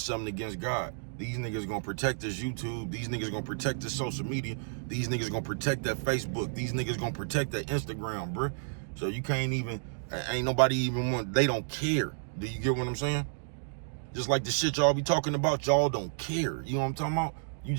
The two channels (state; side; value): silent; left; digital silence